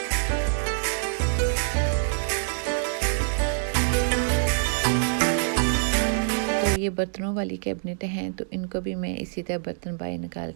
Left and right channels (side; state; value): left; silent; digital silence